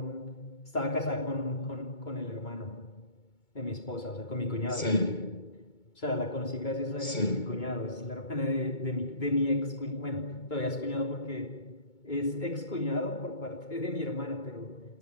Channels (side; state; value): right; late; 2.2 ms